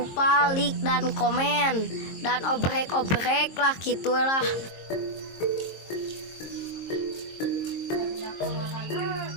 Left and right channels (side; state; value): right; late; 22 ms